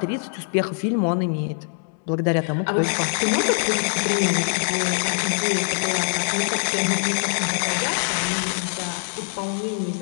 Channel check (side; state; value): right; silent; 63 dB below the other